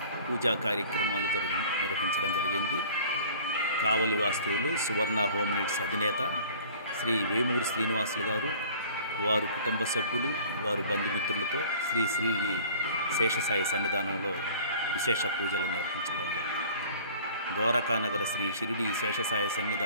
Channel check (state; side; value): inverted; both; correlation -0.48